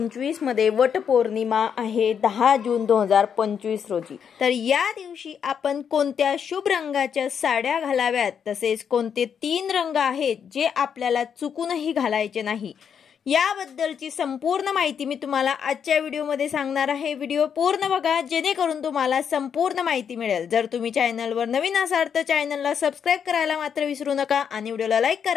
मध्ये वट पौर्णिमा आहे 10 जून 2025 रोजी। तर या दिवशी आपण कोणत्या शुभ रंगाच्या साड्या घालाव्यात, तसेच कोणते 3 रंग आहेत जे आपल्याला चुकूनही घालायचे नाही, याबद्दलची संपूर्ण माहिती मी तुम्हाला आजच्या व्हिडिओमध्ये सांगणार आहे। व्हिडिओ पूर्ण बघा जेणेकरून तुम्हाला संपूर्ण माहिती मिळेल। जर तुम्ही चॅनलवर नवीन असाल तर चॅनलला सबस्क्राइब करायला मात्र विसरू नका आणि व्हिडिओला लाईक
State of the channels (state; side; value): quieter; right; 7.5 dB